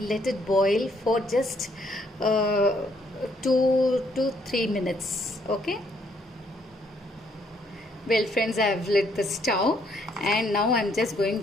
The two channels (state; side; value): normal; both; correlation 0.69